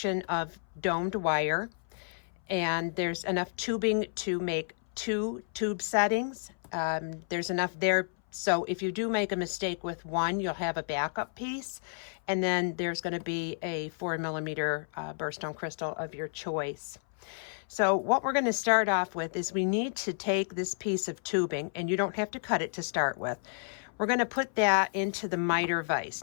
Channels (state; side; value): silent; right; 57 dB below the other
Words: of domed wire, and there's enough tubing to make 2 tube settings. There's enough there, so if you do make a mistake with one, you'll have a backup piece, and then there's going to be a 4mm birthstone crystal of your choice. So what we're going to start off with is we need to take this piece of tubing, and you don't have to cut it to start with. We're going to put that into the miter